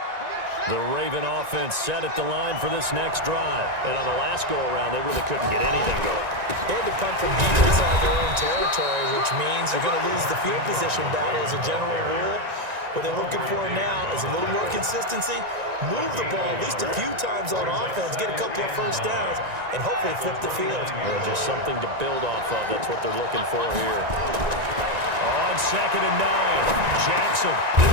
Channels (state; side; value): late; left; 1.9 ms